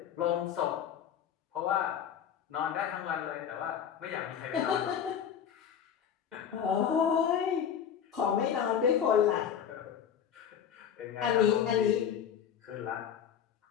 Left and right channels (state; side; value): quieter; right; 8.5 dB